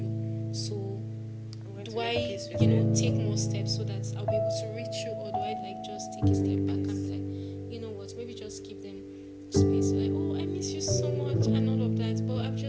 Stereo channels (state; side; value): identical; both; correlation 1.00